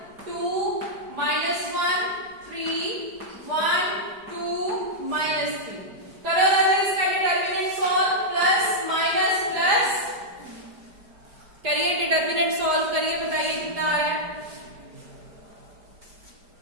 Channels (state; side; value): late; left; 4.9 ms